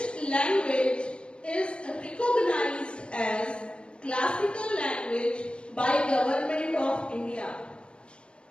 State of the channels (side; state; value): right; late; 0.056 ms